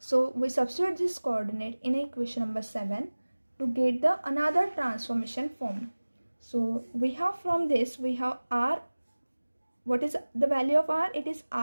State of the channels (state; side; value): inverted; both; correlation -1.00